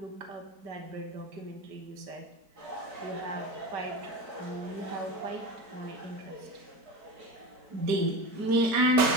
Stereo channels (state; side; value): late; left; 4.6 ms